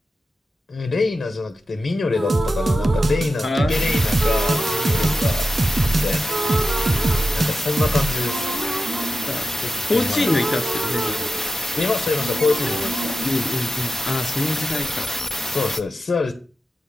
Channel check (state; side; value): normal; both; correlation 0.91